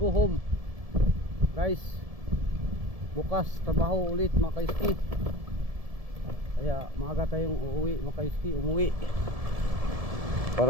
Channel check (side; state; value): left; late; 1.7 ms